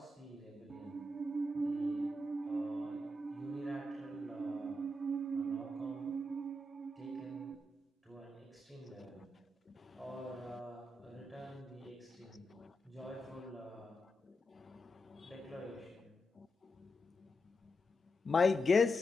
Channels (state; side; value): normal; both; correlation 0.86